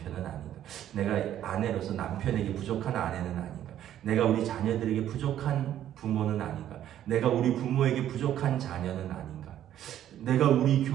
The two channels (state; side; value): quieter; left; 11.4 dB